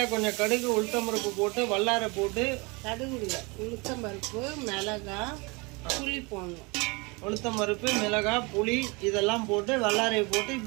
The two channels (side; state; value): left; quieter; 27.8 dB